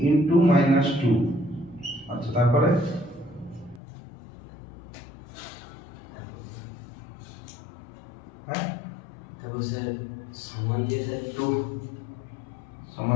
ইনটু -2। আচ্ছা, তারপরে হ্যাঁ, তারপর স্যার সমান দিয়ে স্যার 2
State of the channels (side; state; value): right; drops out; at 3.8 s